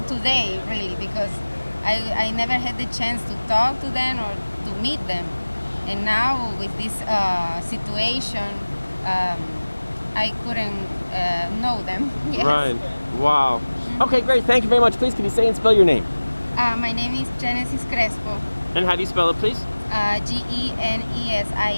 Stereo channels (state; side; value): inverted; both; correlation -1.00